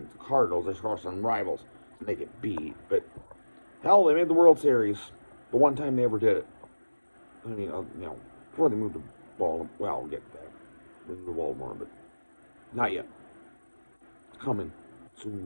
the Cardinals, they score some rivals and they get beat. But, hell, they made the World Series the one time they ever did it. I mean, before they moved to Baltimore. Well, we'll get that. Moved to Baltimore, but not yet. It's coming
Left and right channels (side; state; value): both; inverted; correlation -1.00